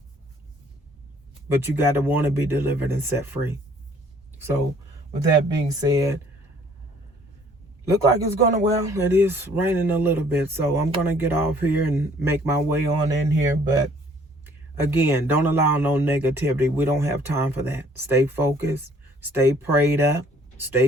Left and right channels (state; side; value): normal; both; correlation 0.59